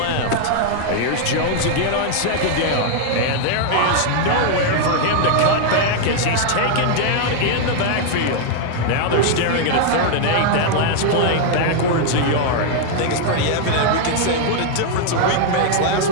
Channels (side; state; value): both; different; correlation 0.00